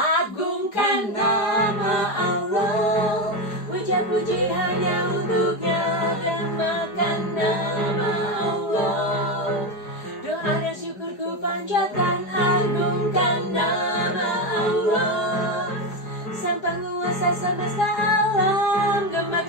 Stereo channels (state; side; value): late; right; 4.9 ms